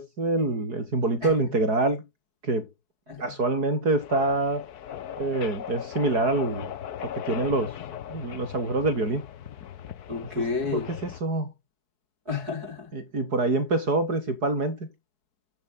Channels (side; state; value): left; late; 4.8 ms